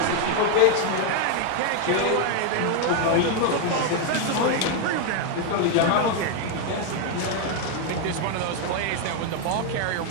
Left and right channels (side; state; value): both; different; correlation 0.01